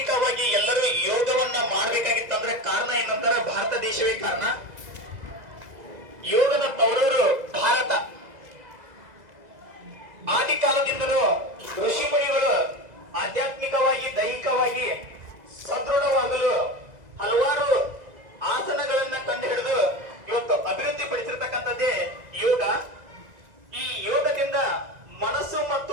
ಎಲ್ಲರೂ ಯೋಗವನ್ನ ಮಾಡ್ಬೇಕಾಗಿತ್ತಂದ್ರೆ ಕಾರಣ ಏನಂದ್ರೆ ಭಾರತ ದೇಶವೇ ಕಾರಣ. ಯೋಗದ ತವರೂರು ಭಾರತ. ಆದಿ ಕಾಲದಿಂದಲೂ ಋಷಿ ಮುನಿಗಳು ಆಧ್ಯಾತ್ಮಿಕವಾಗಿ ದೈಹಿಕವಾಗಿ ಸದೃಢವಾಗಲು ಹಲವಾರು ಆಸನಗಳನ್ನ ಕಂಡು ಹಿಡಿದು ಇವತ್ತು ಅಭಿವೃದ್ಧಿ ಪಡಿಸಿರ್ತಕ್ಕಂಥದ್ದೇ ಯೋಗ. ಈ ಯೋಗದಿಂದ ಮನಸ್ಸು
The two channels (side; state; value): left; late; 2.0 ms